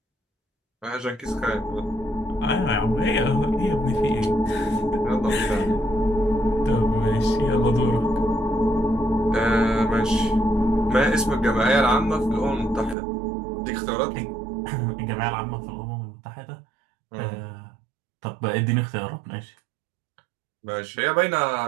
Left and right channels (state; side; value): drops out; left; at 13.0 s